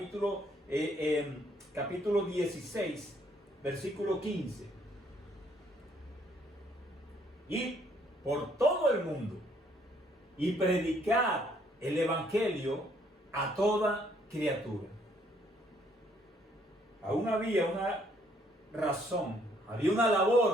16, versículo 15. Y por todo el mundo y predicar el Evangelio a toda criatura. Aún había una razón, había una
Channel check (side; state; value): both; normal; correlation 0.66